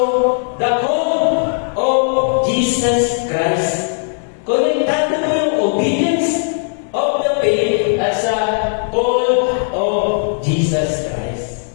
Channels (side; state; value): right; silent; digital silence